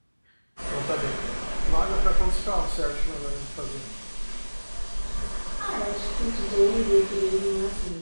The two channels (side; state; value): both; inverted; correlation -1.00